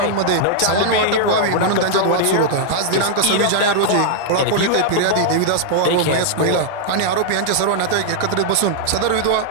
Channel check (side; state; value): both; different; correlation -0.01